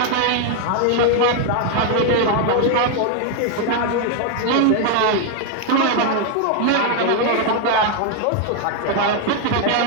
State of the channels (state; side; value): different; both; correlation 0.00